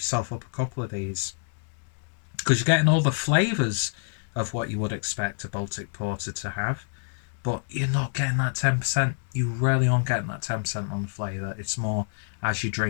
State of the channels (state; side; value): silent; right; digital silence